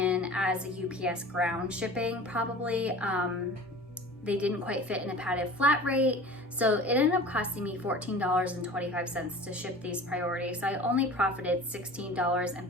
as a UPS ground shipping probably. They didn't quite fit in a padded flat rate. So it ended up costing me $14.25 to ship these priority. So I only profited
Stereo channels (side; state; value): both; normal; correlation 0.40